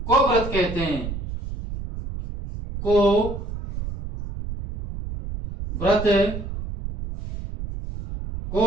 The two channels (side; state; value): right; noise; rumble, 8 dB below the sound